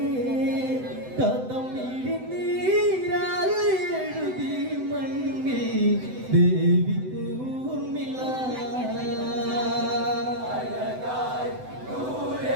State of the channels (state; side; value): late; left; 7.9 ms